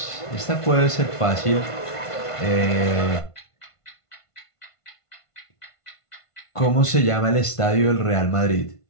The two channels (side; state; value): right; late; 1.5 ms